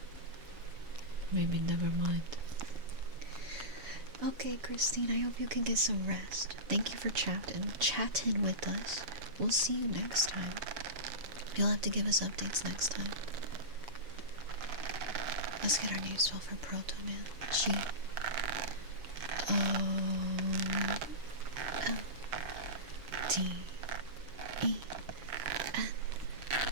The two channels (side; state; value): left; late; 7.2 ms